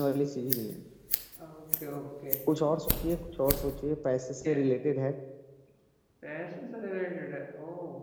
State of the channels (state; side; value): identical; both; correlation 1.00